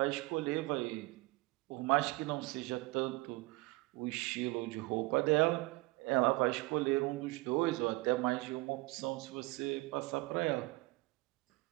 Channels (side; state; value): left; quieter; 22.5 dB